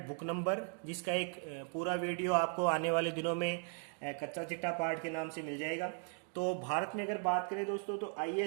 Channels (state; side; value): quieter; left; 37.1 dB